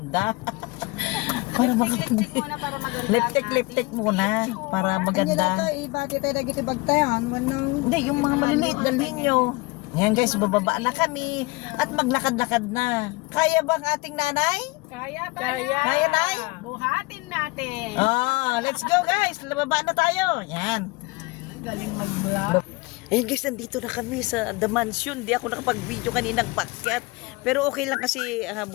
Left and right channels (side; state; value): right; quieter; 24.0 dB